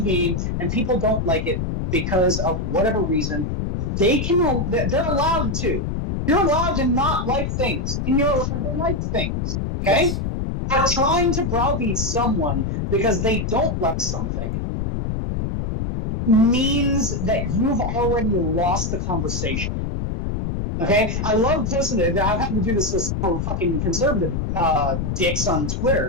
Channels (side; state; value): left; noise; rumble, 2 dB below the sound